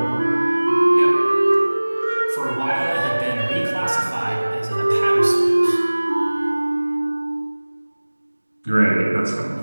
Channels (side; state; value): both; inverted; correlation -1.00